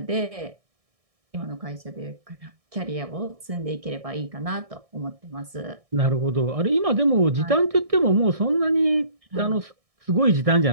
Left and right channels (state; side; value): late; left; 1.6 ms